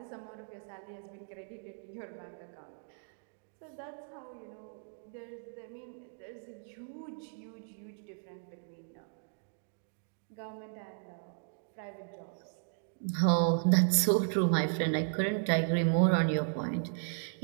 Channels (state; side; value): silent; left; digital silence